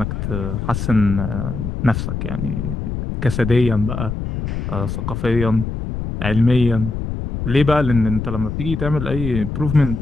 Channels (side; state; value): left; noise; rumble, 4 dB below the sound